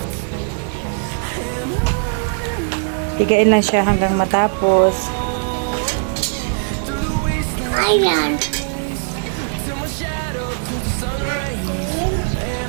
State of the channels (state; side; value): silent; left; 66 dB below the other